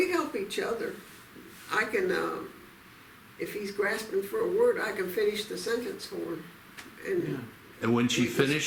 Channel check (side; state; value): both; identical; correlation 1.00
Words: help each other. I can, if he's grasping for a word, I can finish the sentence for him. And Yeah. And when she